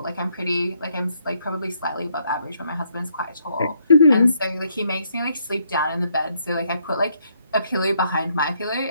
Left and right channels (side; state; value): both; inverted; correlation -0.72